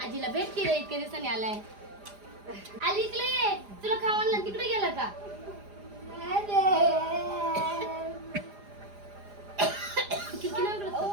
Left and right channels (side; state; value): left; late; 4.9 ms